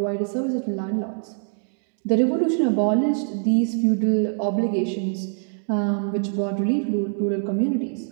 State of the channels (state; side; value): silent; left; digital silence